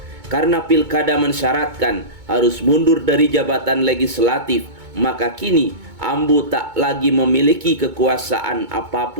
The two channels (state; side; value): late; left; 2.2 ms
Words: Karena pilkada mensyaratkan harus mundur dari jabatan legislatif, maka kini Ambu tak lagi memiliki kekuasaan